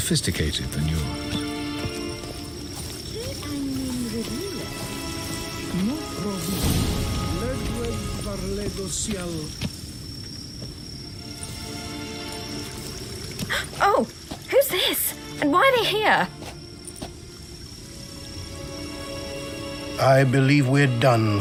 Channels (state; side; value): identical; both; correlation 1.00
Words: than yours. Oh, who's this? And why are they here? I believe we're done